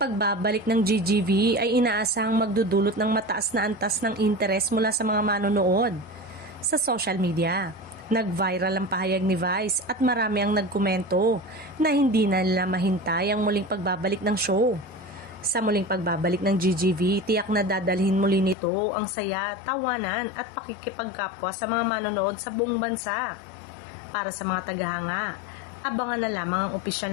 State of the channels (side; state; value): right; drops out; at 18.6 s